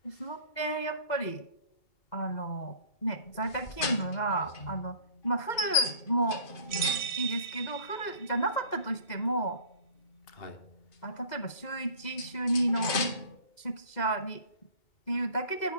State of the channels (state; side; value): late; right; 2.0 ms